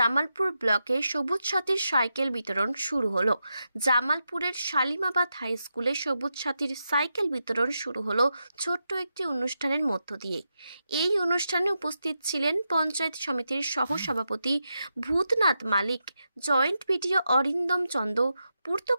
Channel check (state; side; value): inverted; both; correlation -0.87